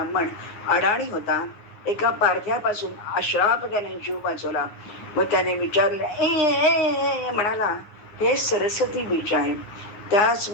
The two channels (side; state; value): right; late; 9.5 ms